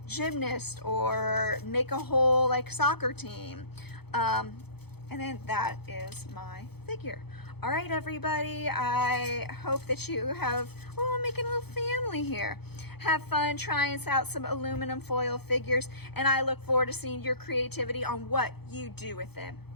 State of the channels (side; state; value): right; late; 0.97 ms